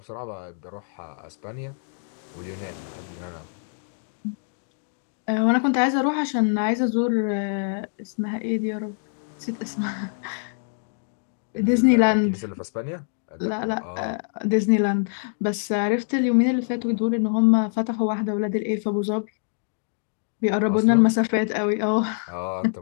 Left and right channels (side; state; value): right; silent; digital silence